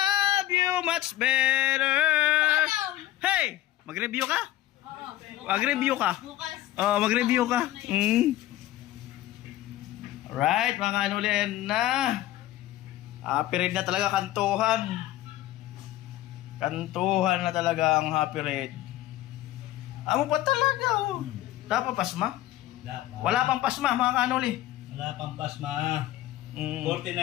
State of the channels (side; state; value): right; quieter; 14.7 dB